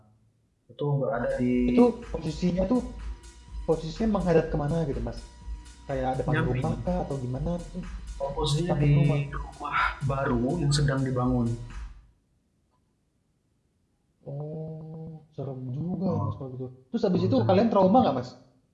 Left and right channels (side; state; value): both; identical; correlation 1.00